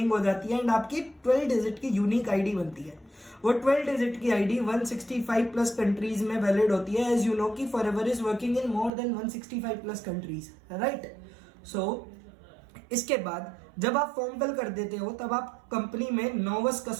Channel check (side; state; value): left; drops out; at 8.9 s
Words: हो जाती है एंड आपकी 12 डिजिट की यूनिक आईडी बनती है। वो 12 डिजिट की आईडी 165 प्लस कंट्रीज में वैलिड होती है। एज यू नो कि Forever is working in more than 165 plus countries, right. So इसके बाद जब आप फॉर्म फिल कर देते हो तब आप कंपनी में नोवस